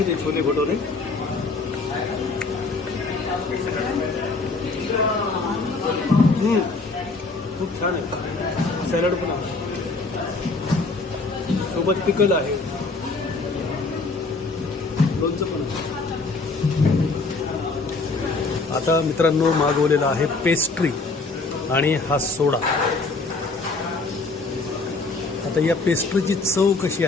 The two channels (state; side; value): quieter; right; 3.7 dB